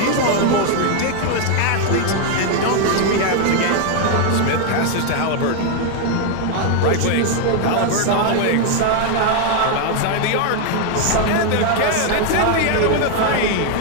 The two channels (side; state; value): both; different; correlation 0.01